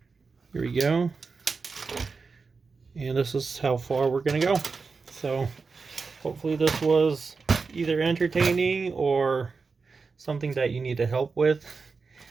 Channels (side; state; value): left; quieter; 4.6 dB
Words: Here we go. And this is how far we're going to go. So hopefully this was either entertaining or something that you need to help with.